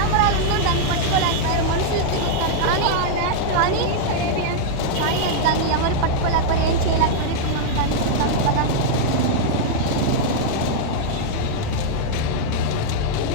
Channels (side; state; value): both; different; correlation -0.01